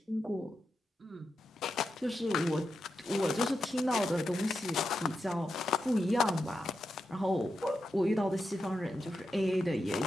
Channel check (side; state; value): both; normal; correlation 0.87